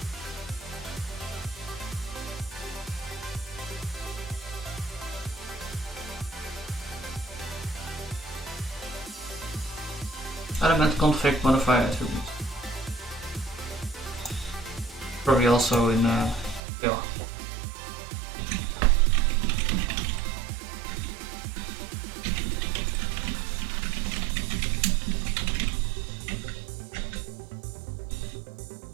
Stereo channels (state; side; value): drops out; left; at 16.6 s